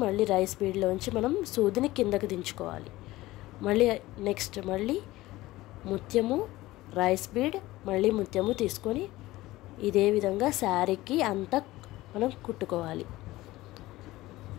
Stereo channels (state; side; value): quieter; right; 17.9 dB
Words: మళ్ళీ రైస్ బీడ్లోంచి మనం సూదిని కిందకి దించుకోవాలి. మళ్ళీ నెక్స్ట్ మళ్ళీ ముత్యము రైస్ బీడ్ మళ్ళీ ముత్యము తీసుకొని ఇదే విధంగా శారీకి అంతా మనం కుట్టుకోవాలి.